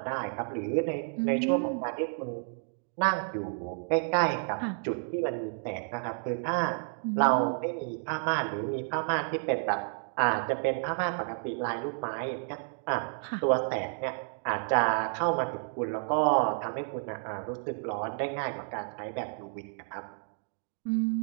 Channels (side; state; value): left; silent; 57 dB below the other